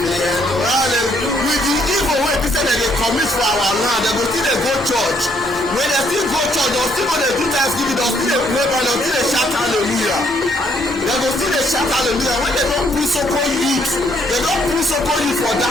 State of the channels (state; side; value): normal; both; correlation 0.69